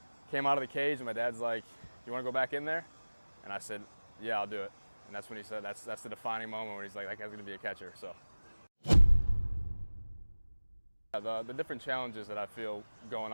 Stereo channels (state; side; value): inverted; both; correlation -1.00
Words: Came out of the cage, and my dad's like, "You want to go back in there?" And I said, "Yeah, I'll do it." And that's when he said, that's the defining moment where he's like, "That guy's going to be a catcher." So the different challenges that I feel going